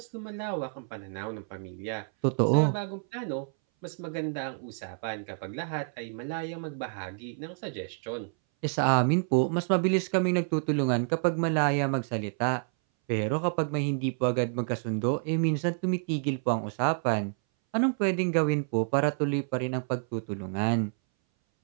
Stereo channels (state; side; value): silent; left; 59 dB below the other